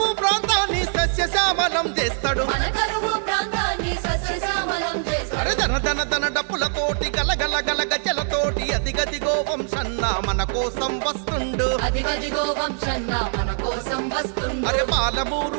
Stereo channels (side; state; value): left; silent; digital silence